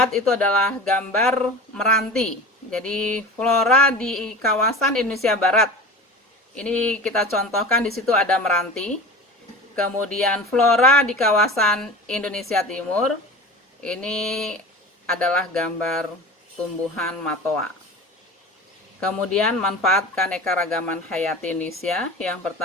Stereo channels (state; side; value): normal; both; correlation 0.35